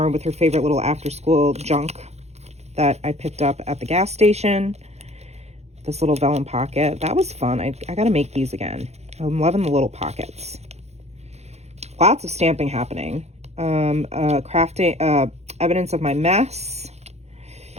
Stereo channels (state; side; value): late; left; 0.31 ms